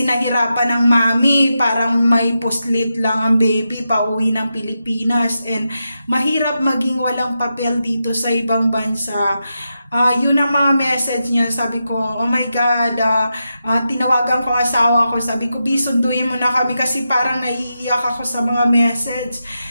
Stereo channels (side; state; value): both; inverted; correlation -0.88